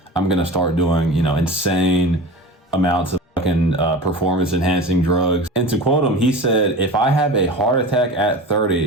going to start doing, insane amounts of fucking performance enhancing drugs. And to quote him, he said, if I have a heart attack at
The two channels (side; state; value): both; normal; correlation 0.33